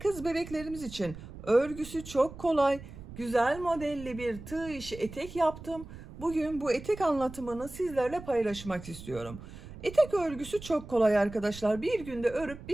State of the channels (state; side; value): noise; right; rumble, 14 dB below the sound